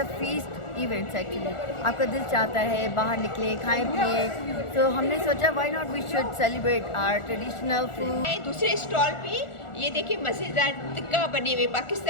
a feast events actually, आपका दिल चाहता है बाहर निकले खाएं पिए, तो हमने सोचा why not we should celebrate our traditional food. दूसरे स्टॉल पे ये देखिए मज़ेदार टिक्का बने हुए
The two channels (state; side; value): late; right; 1.4 ms